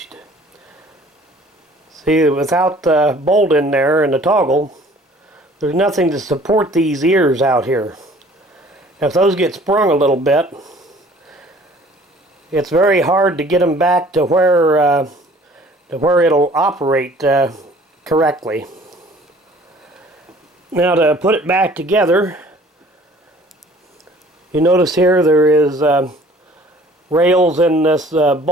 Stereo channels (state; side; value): normal; both; correlation 0.52